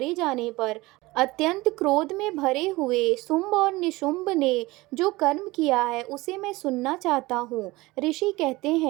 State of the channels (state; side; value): quieter; left; 20.8 dB